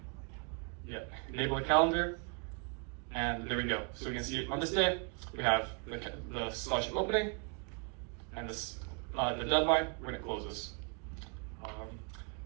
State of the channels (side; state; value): left; quieter; 37.2 dB